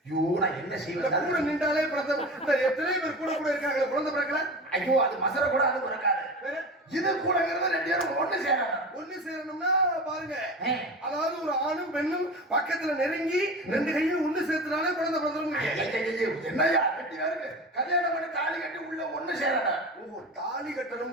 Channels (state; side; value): normal; both; correlation 0.31